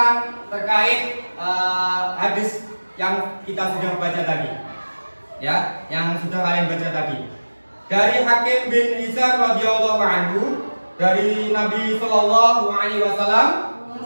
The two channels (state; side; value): inverted; both; correlation -1.00